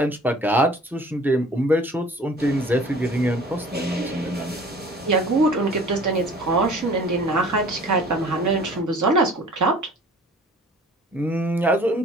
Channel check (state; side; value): normal; both; correlation 0.48